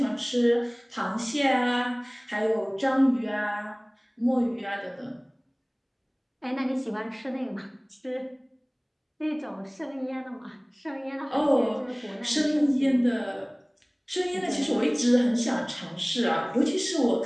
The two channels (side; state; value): both; identical; correlation 1.00